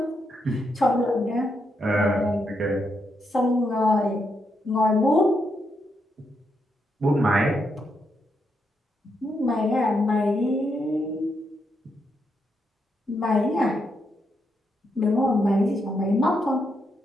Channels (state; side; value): normal; both; correlation 0.80